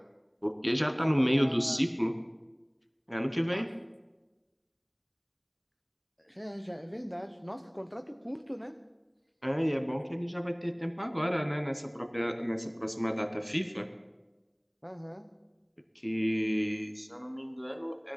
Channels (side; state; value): both; identical; correlation 1.00